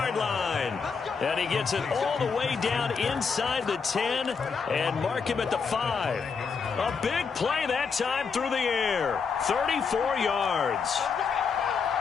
line. And he gets it all the way down inside the 10 and mark him at the 5. A big play that time through the air. 34 yards.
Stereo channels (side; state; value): right; quieter; 5.6 dB